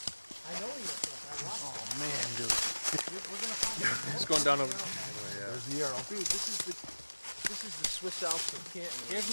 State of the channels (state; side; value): inverted; both; correlation -1.00